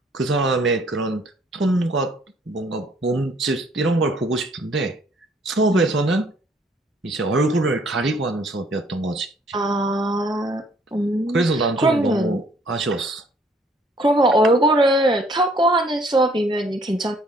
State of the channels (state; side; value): normal; both; correlation 0.62